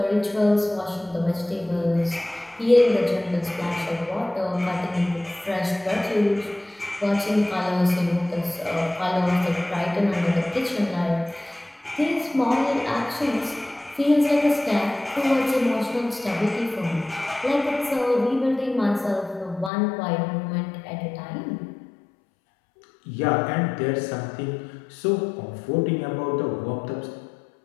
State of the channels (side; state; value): right; drops out; at 19.7 s